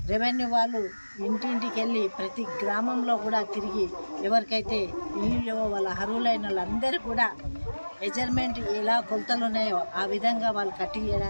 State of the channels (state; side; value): inverted; both; correlation -1.00